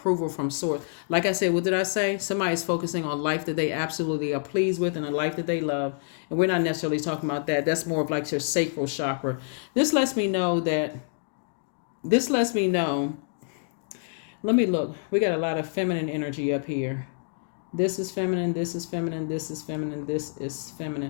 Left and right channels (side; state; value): right; silent; digital silence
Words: from source. Like I said, what did I say? Somebody's focusing on life that they absolutely are pleased with and a life that they love. And we're not necessarily talking about that. That's more of like your sacral chakra. This lets me know. Let me look. We got a lot of feminine energy up here. This is feminine, this is feminine, this is feminine, this is